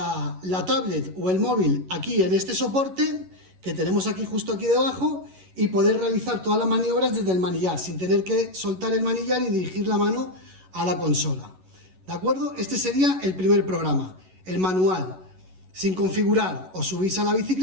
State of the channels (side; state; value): left; late; 11 ms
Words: tablet o el móvil aquí en este soporte que tenemos aquí justo aquí debajo y poder realizar todas las maniobras desde el manillar sin tener que soltar el manillar y dirigir la mano a la consola. ¿De acuerdo? Este sería el primer programa, el manual. Sin configurar, os subís a la